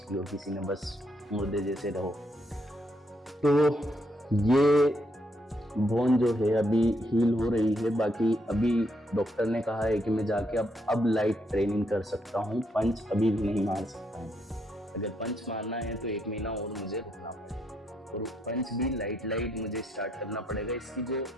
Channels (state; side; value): normal; both; correlation 0.75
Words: ली हो किसी ने, बस मुर्दे जैसे रहो। तो ये बोन जो है अभी हील हो रही है, बाकी अभी डॉक्टर ने कहा है कि मैं जाके अब लाइट ट्रेनिंग कर सकता हूँ, पंच अभी भी नहीं मार सकता हूँ। अगर पंच मारना है तो 1 महीना और मुझे रुकना पड़ेगा, और पंच भी लाइट मुझे स्टार्ट करना पड़ेगा। इसकी जो